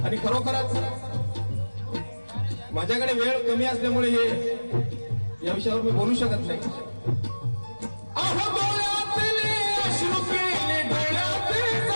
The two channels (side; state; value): both; inverted; correlation -1.00